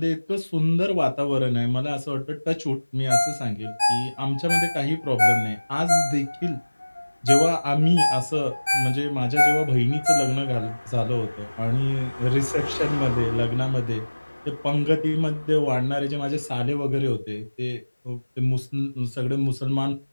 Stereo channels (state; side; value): inverted; both; correlation -1.00